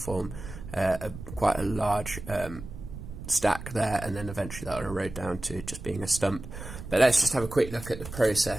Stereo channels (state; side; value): noise; right; rumble, 11 dB below the sound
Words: quite a large stack there, and then eventually that will erode down to just being a stump. But let's just have a quick look at the